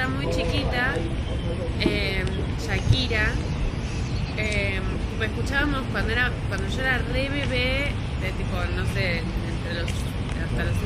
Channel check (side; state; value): both; identical; correlation 1.00